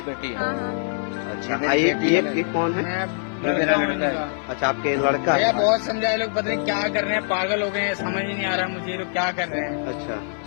बेटी है। हाँ हाँ। अच्छा, ये कौन है? मेरा लड़का है। अच्छा, आपके लड़का भैया है? बहुत समझाए लोग, पता नहीं क्या कर रहे हैं, पागल हो गए हैं, समझ ही नहीं आ रहा मुझे लोग क्या कर रहे हैं। अच्छा,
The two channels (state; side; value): silent; right; 56 dB below the other